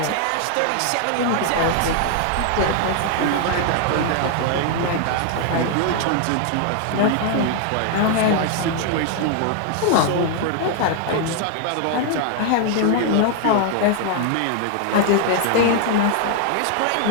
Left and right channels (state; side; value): different; both; correlation 0.00